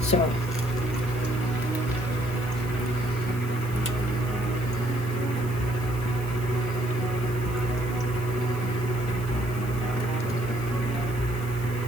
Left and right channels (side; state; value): right; noise; hiss, 18 dB below the sound